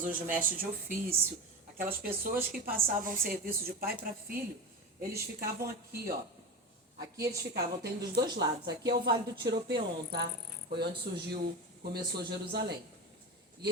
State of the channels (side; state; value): both; normal; correlation 0.24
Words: os mestres de ofício, aquelas pessoas que passavam serviço de pai para filho. Eles ficavam aqui, ó. Aqui eles ficavam, tem dos dois lados. Aqui é o Vale do Tiropeon, tá? Foi onde começou Jerusalém. E